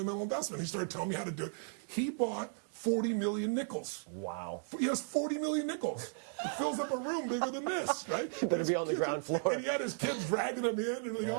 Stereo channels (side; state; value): left; silent; digital silence